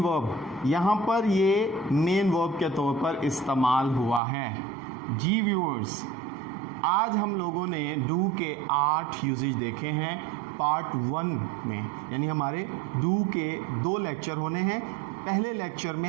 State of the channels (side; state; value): left; drops out; at 4.2 s